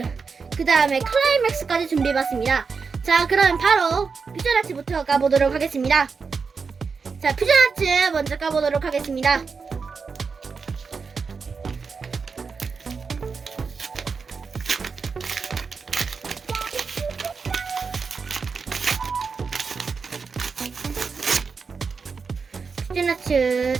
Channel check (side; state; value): left; quieter; 5.2 dB